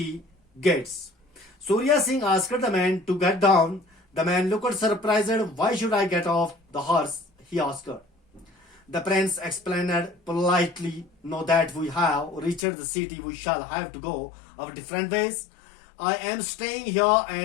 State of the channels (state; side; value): drops out; right; at 12.7 s